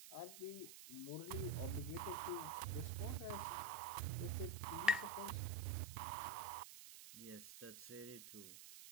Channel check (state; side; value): noise; right; hiss, 12 dB below the sound